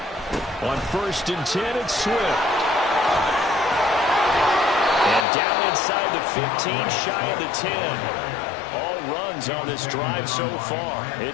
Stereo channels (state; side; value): drops out; right; at 5.2 s